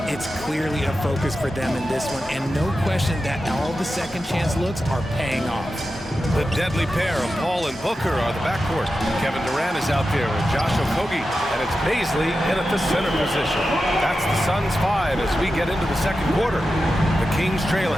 it's clearly a focus for them in this one, and no question that all the second chance looks are paying off. The deadly pair of Paul and Booker are the backcourt. Kevin Durant is out there with Josh Okogie, and it's Baisley in at the center position. That's the Suns 5 as we get into the second quarter. The Kings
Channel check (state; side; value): normal; both; correlation 0.91